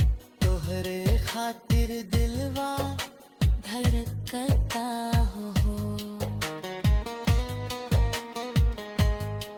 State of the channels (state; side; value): identical; both; correlation 1.00